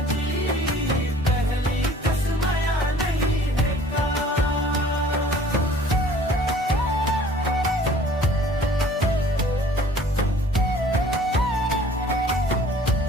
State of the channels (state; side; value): normal; both; correlation 0.51